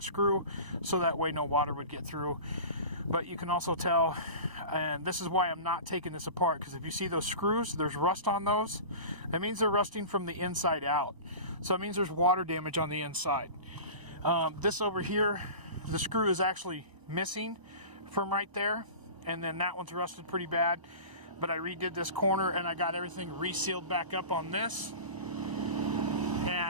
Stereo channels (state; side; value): late; left; 1.0 ms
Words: screw so that way no water would get through. But you can also tell, and this is why I'm not taking this apart, because if you see those screws, there's rust on those. That means they're rusting from the inside out. So it means there's water damage on the inside. This over here, the screw is actually missing from right there, and then that one's rusted pretty bad. But I redid this corner and I got everything resealed back up on this,